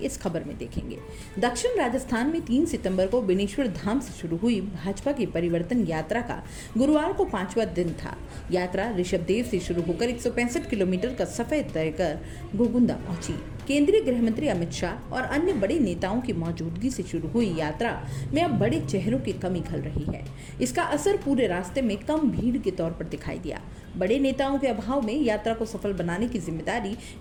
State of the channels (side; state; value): both; identical; correlation 1.00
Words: खबर में देखेंगे। दक्षिण राजस्थान में 3 सितंबर को बेनेश्वर धाम से शुरू हुई भाजपा की परिवर्तन यात्रा का गुरुवार को 5वां दिन था। यात्रा ऋषभदेव से शुरू होकर 165 किलोमीटर का सफर तय कर घोगुंदा पहुंची। केंद्रीय गृह मंत्री अमित शाह और अन्य बड़े नेताओं की मौजूदगी से शुरू हुई यात्रा में अब बड़े चेहरों की कमी खल रही है। इसका असर पूरे रास्ते में कम भीड़ के तौर पर दिखाई दिया। बड़े नेताओं के अभाव में यात्रा को सफल बनाने की जिम्मेदारी